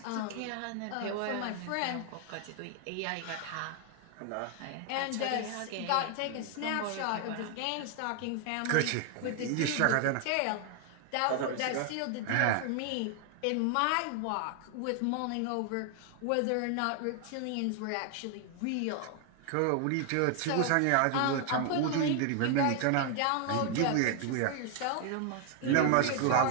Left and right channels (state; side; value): different; both; correlation 0.00